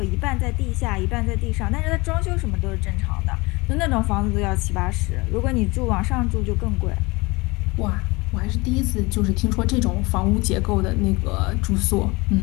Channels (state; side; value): quieter; right; 24.3 dB